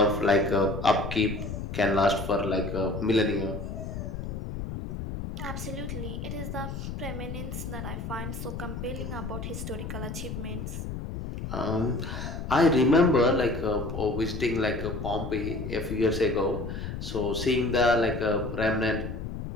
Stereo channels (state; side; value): noise; left; rumble, 6 dB below the sound